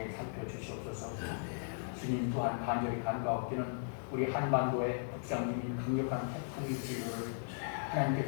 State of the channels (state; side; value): silent; right; digital silence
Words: 살펴주시옵소서. 주님 또한 간절히 간과하옵기는 우리 한반도에 북상 중인 강력한 태풍의 진로를